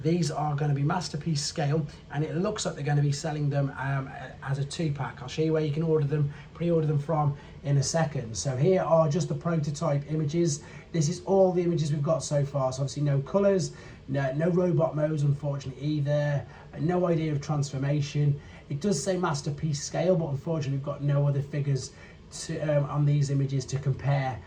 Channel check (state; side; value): identical; both; correlation 1.00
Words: These are going to be Masterpiece Scale, and it looks like they're going to be selling them as a 2-pack. I'll show you where you can order them, pre-order them from in a second. So here are just the prototype images. This is all the images we've got so far. So obviously no colours, no robot modes unfortunately either, no idea of transformation. It does say Masterpiece Scale, but unfortunately we've got no other figures to on these images to compare.